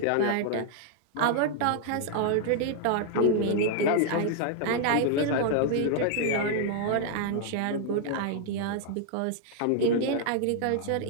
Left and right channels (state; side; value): different; both; correlation 0.00